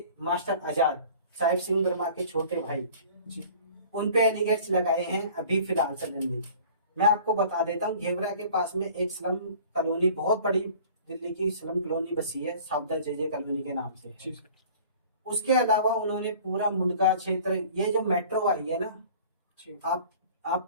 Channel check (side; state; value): both; inverted; correlation -0.47